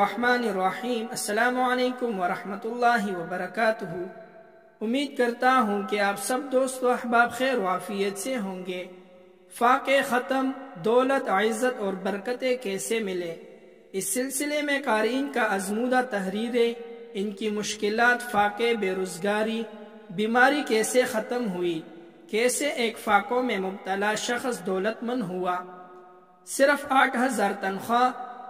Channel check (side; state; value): both; identical; correlation 1.00